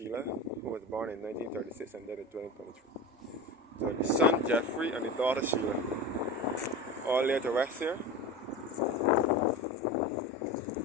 who was born in 1936 and died in 2023. So the son Jeffrey and the daughter Sheila, all laid to rest here.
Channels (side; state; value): both; normal; correlation 0.28